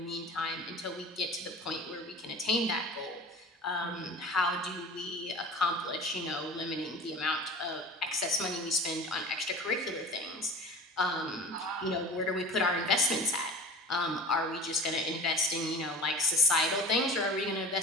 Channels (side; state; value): both; normal; correlation 0.38